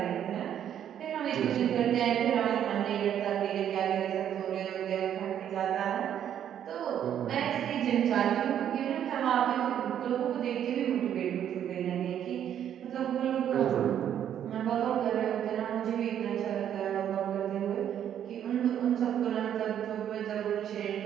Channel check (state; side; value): quieter; left; 9.9 dB